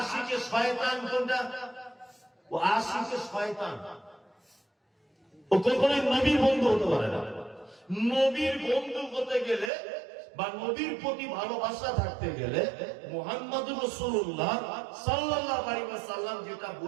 শয়তান? কোনটা? ও আশিকে শয়তান। ও কখনোই নবীর বন্ধু হতে পারে না। নবীর বন্ধু হতে গেলে বা নবীর প্রতি ভালোবাসা থাকতে গেলে মুহাম্মদুর রাসূলুল্লাহ সাল্লাল্লাহু আলাইহি ওয়াসাল্লাম যেটা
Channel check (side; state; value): left; drops out; at 9.7 s